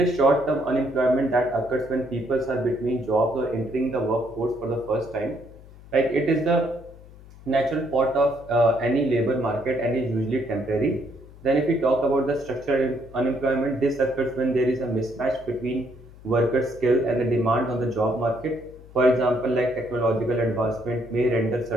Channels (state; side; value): noise; left; hum, 20 dB below the sound